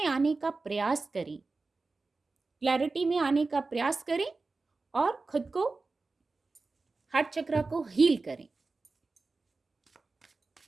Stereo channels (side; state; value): left; quieter; 3.8 dB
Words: आने का प्रयास करें, क्लैरिटी में आने का प्रयास करें और खुद को, हार्ट चक्र को हील करें,